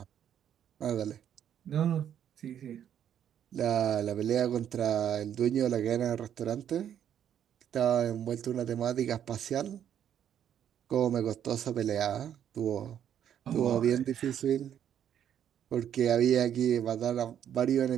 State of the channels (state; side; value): quieter; left; 9.7 dB